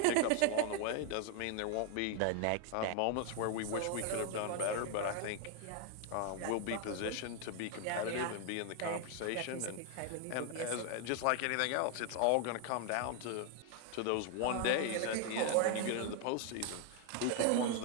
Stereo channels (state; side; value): different; both; correlation 0.00